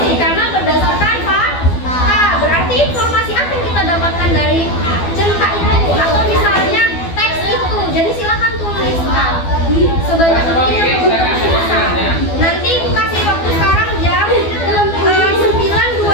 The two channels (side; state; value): right; late; 12 ms